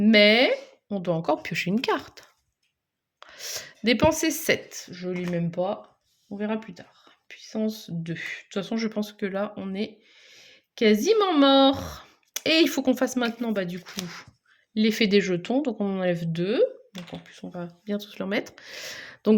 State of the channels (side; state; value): both; identical; correlation 1.00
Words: on doit encore piocher une carte. Dépenser 7. Je ne lis même pas. On verra plus tard. Puissance 2. De toute façon, je pense que là, on est quasiment mort. Et il faut qu'on fasse maintenant, du coup, l'effet des jetons. Donc, on en enlève 2. Donc, en plus, on va bien tous leur mettre. Donc,